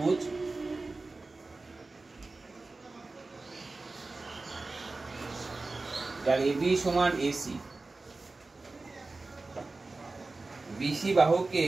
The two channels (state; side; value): quieter; left; 3.5 dB